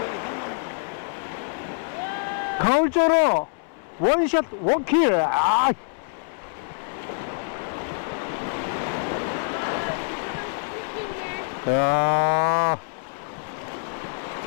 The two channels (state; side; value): silent; right; 61 dB below the other